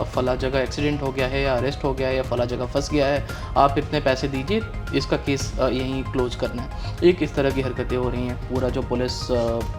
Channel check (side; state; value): both; identical; correlation 1.00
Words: फला जगह एक्सीडेंट हो गया है या अरेस्ट हो गया है या फला जगह फंस गया है, आप इतने पैसे दीजिए, इसका केस यहीं क्लोज करना है। एक इस तरह की हरकतें हो रही हैं। पूरा जो पुलिस